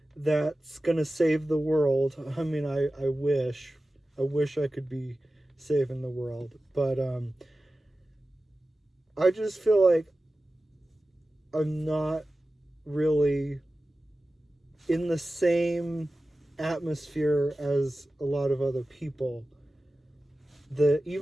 that's going to save the world. I mean, I wish I could be saving the world, but I just feel like I'm not really in the same atmosphere as a lot of other people.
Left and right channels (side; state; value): both; normal; correlation 0.95